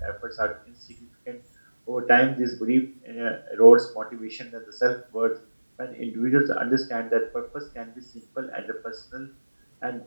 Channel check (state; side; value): inverted; both; correlation -1.00